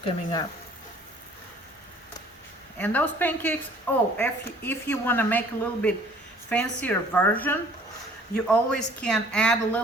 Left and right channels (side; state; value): both; normal; correlation 0.54